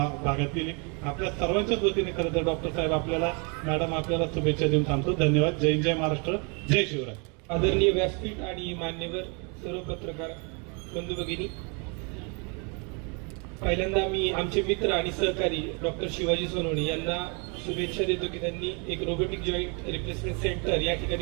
भागातील. आपल्या सर्वांच्याच वतीने खरं तर डॉक्टर साहेब आपल्याला, मॅडम आपल्याला शुभेच्छा देऊन थांबतो. धन्यवाद. जय जय महाराष्ट्र, जय शिवराय. आदरणीय व्यासपीठ आणि मान्यवर सर्व पत्रकार बंधू भगिनी, पहिल्यांदा मी आमचे मित्र आणि सहकारी डॉक्टर शिवाजी सोनवणे यांना शुभेच्छा देतो की त्यांनी एक रोबोटिक जॉईंट रिप्लेसमेंट सेंटर या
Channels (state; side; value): quieter; left; 34.3 dB